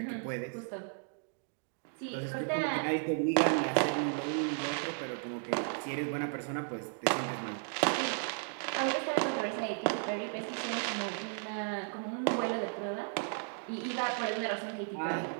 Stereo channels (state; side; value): silent; left; 55 dB below the other